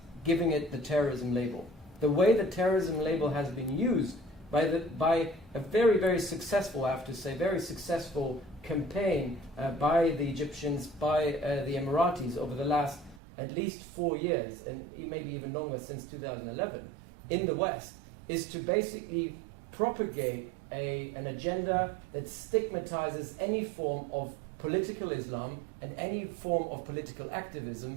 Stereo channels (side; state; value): left; drops out; at 13.2 s